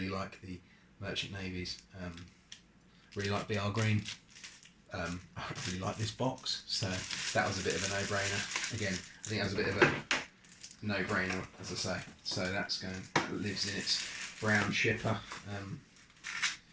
like the Merchant Navies. Really like BR Green. I really like this box, so that was a bit of a no-brainer. Again, I think that was a bit of a no-brainer, as I say. So that lives in its brown shipper,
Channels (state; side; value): identical; both; correlation 1.00